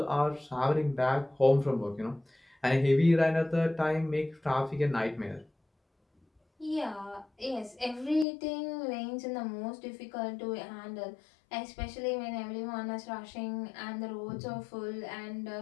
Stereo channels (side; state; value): right; drops out; at 8.2 s